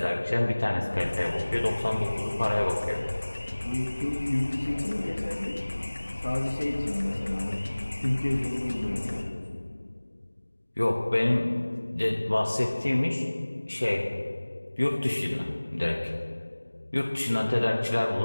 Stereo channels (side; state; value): both; inverted; correlation -1.00